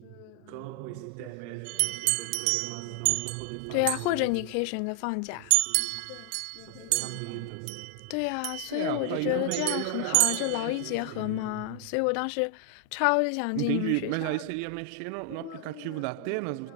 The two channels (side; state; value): both; different; correlation 0.00